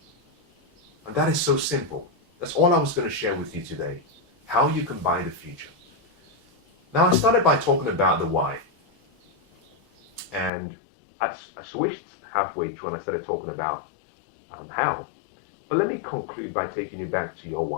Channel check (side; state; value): right; drops out; at 10.5 s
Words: And that is so simple. That's all I was going to share with you today. How you can buy the future. Now, I started by talking about the why. And I switched halfway through and I started talking about how. But let me conclude by taking you back to your